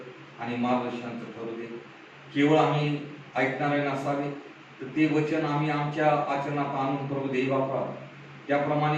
आणि मार्गदर्शनाचं ठरू दे. केवळ आम्ही ऐकणारे नसावे, तर ते वचन आम्ही आमच्या आचरणात आणून प्रभू देव बापा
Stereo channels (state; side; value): identical; both; correlation 1.00